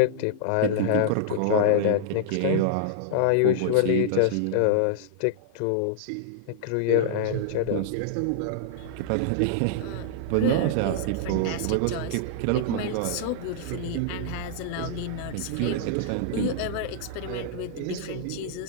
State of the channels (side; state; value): both; different; correlation -0.01